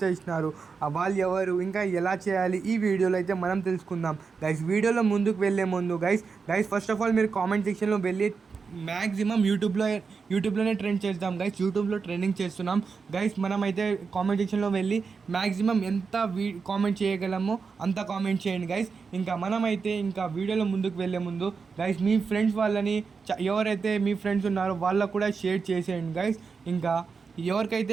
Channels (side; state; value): left; quieter; 5.2 dB